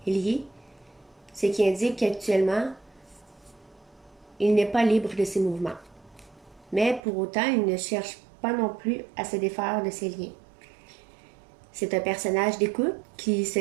liés, ce qui indique qu'actuellement, il n'est pas libre de ses mouvements. Mais pour autant, il ne cherche pas non plus à se défaire de ses liens. C'est un personnage d'écoute qui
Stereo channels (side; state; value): left; drops out; at 7.0 s